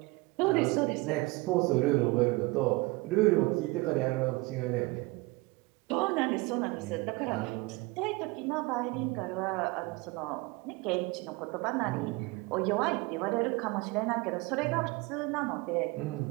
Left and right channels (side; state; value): left; quieter; 23.9 dB